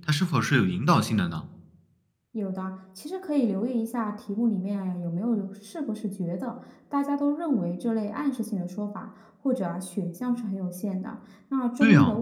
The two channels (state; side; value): identical; both; correlation 1.00